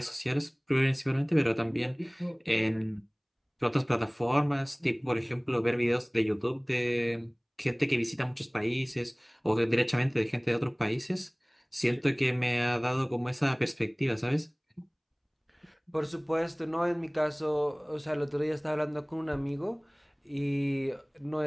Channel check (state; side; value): identical; both; correlation 1.00